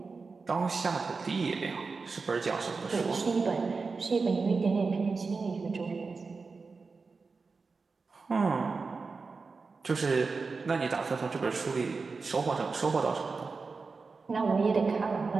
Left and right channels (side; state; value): left; quieter; 4.4 dB